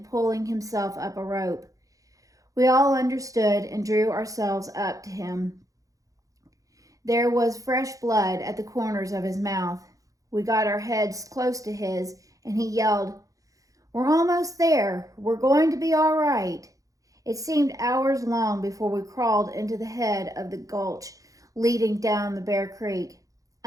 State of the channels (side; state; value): left; late; 0.16 ms